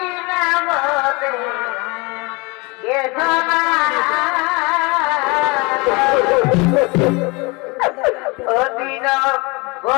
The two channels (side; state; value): right; quieter; 27.3 dB